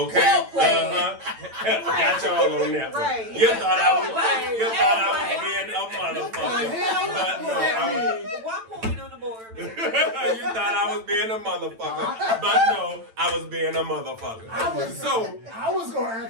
Well played. Got y'all on that one. Right. You thought I was Well being a motherfucker. But no, I One point on the board, man. you thought I was being a motherfucker. But no, I was being a motherfucker. I was gonna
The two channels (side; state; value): left; late; 9.0 ms